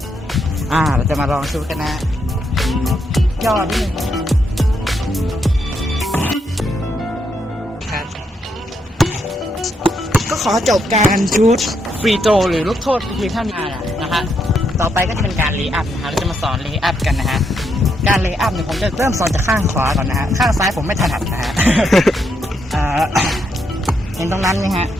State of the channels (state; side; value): normal; both; correlation 0.78